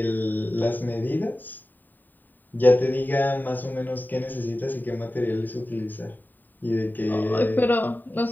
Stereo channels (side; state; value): right; late; 0.089 ms